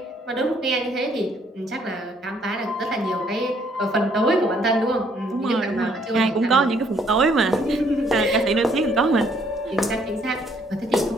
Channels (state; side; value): normal; both; correlation 0.66